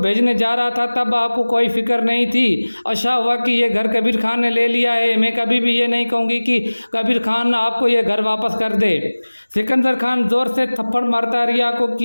जा रहा था तब आपको कोई फिक्र नहीं थी। अच्छा हुआ कि ये घर कबीर खान ने ले लिया है। मैं कभी भी ये नहीं कहूँगी कि कबीर खान आपको ये घर वापस कर दे। सिकंदर खान जोर से थप्पड़ मारता रिया को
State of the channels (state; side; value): inverted; both; correlation -1.00